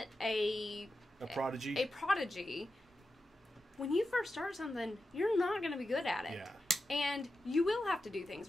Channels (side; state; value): both; normal; correlation 0.90